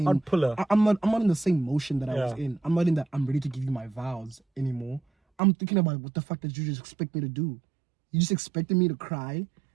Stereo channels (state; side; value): drops out; left; at 5.4 s